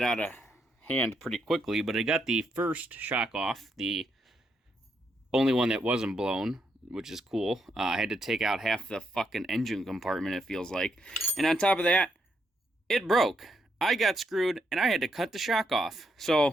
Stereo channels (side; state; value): both; normal; correlation 0.78